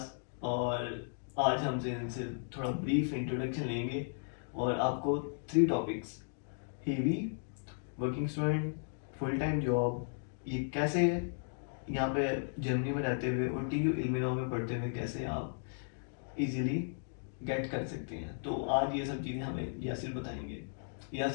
और आज हमसे इनसे थोड़ा ब्रीफ इंट्रोडक्शन लेंगे और आपको 3 topics heavy working student, full time job, ये कैसे यहाँ पे जर्मनी में रहते हुए और TU इल्मिनॉ में पढ़ते हुए कैसे आप इजीली गेट कर सकते हैं। तो आज ये सब चीज़ें हमें यासिर बताएंगे।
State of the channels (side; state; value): right; silent; digital silence